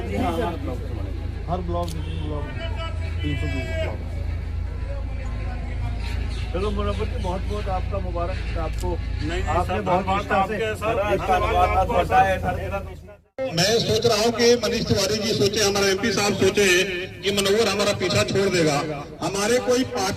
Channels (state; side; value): identical; both; correlation 1.00